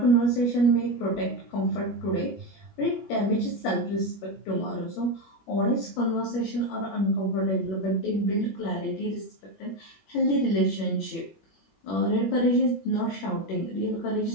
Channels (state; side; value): late; right; 21 ms